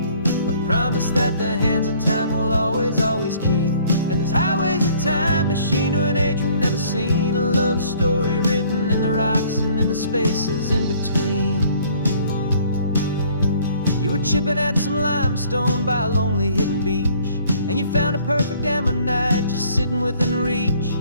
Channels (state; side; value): inverted; both; correlation -0.58